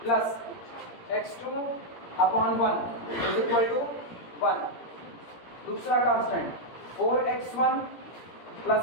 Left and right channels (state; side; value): late; right; 17 ms